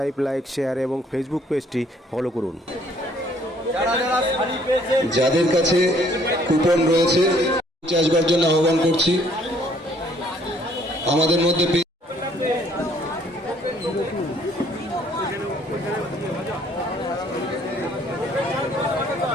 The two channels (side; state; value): both; normal; correlation 0.62